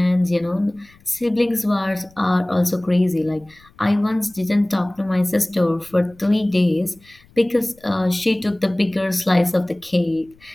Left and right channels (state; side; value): noise; left; rumble, 29 dB below the sound